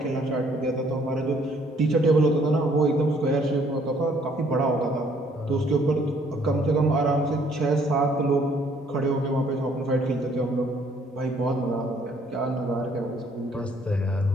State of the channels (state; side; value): normal; both; correlation 0.63